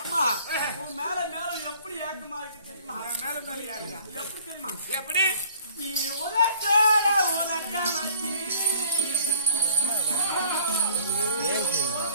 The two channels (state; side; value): inverted; both; correlation -0.55